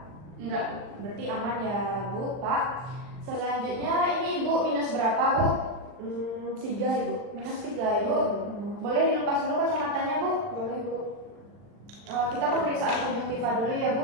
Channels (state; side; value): late; left; 40 ms